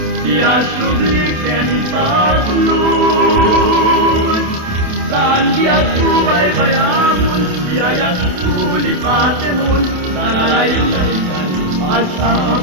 yagsubliken patlun, saan diag subay-bayamun, diayag tulipatemun, sa nalaylaikan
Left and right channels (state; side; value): late; left; 27 ms